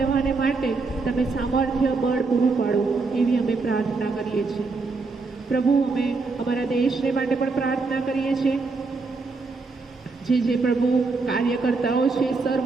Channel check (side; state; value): left; quieter; 4.0 dB